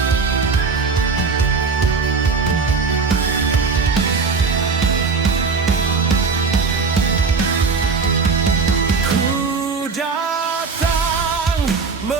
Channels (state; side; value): quieter; left; 4.7 dB